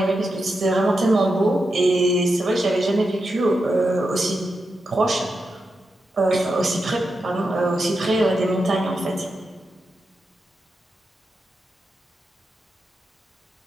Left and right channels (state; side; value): normal; both; correlation 0.88